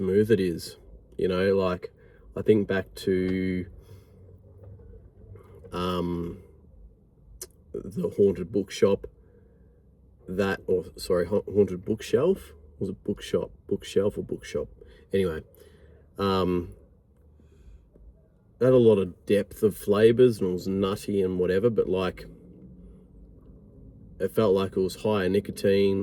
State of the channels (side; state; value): both; identical; correlation 1.00